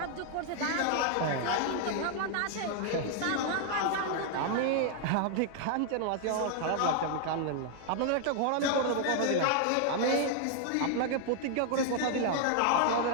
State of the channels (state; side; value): different; both; correlation 0.00